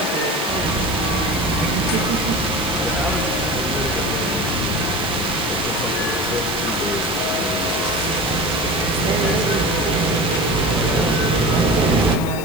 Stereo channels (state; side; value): noise; left; hiss, 13 dB below the sound